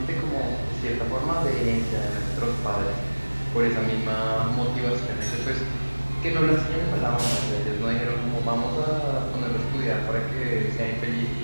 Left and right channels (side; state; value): both; inverted; correlation -1.00